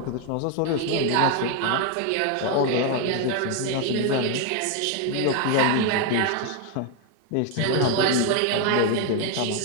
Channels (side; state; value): both; different; correlation 0.01